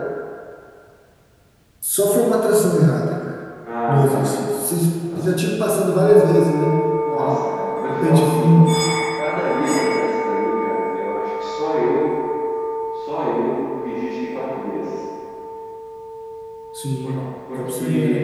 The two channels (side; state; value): both; identical; correlation 1.00